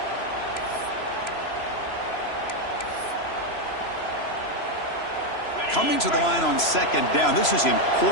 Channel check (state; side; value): late; right; 3.0 ms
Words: Coming to the line on second down. This is